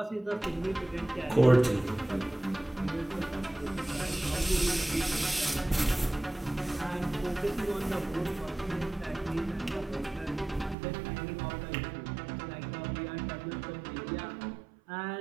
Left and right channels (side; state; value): left; drops out; at 10.8 s